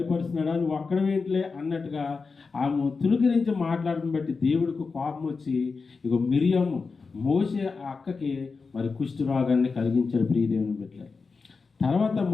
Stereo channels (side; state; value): right; quieter; 4.6 dB